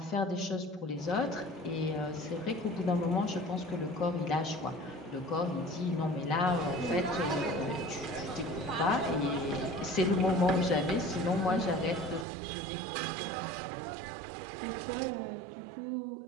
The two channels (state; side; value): drops out; left; at 12.2 s